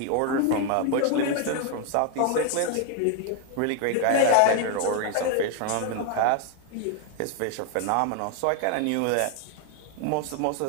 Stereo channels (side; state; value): both; different; correlation 0.01